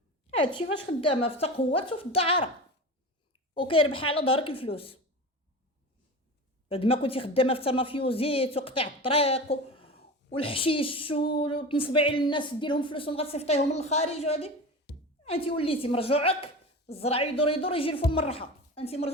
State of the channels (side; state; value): both; normal; correlation 0.30